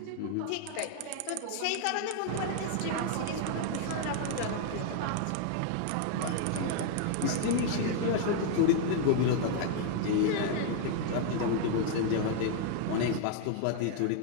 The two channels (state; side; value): different; both; correlation 0.00